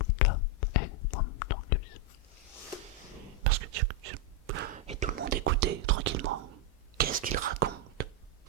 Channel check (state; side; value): normal; both; correlation 0.01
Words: parce que et tout le monde écoutait tranquillement. Qu'est-ce qu'il raconte?